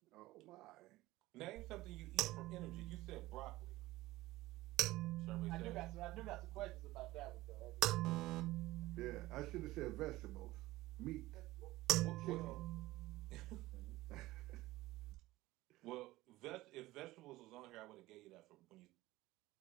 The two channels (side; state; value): left; quieter; 18.1 dB